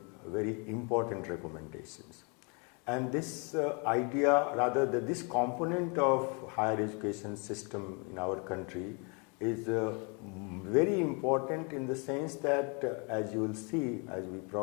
very important recommendations. And this idea, rather this component of higher education system in our country is very important in the sense that as you will see as we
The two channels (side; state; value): right; quieter; 34.1 dB